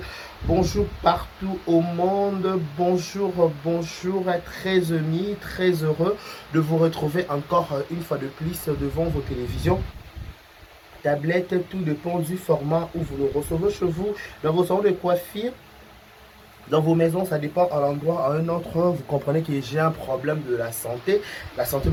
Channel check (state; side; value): identical; both; correlation 1.00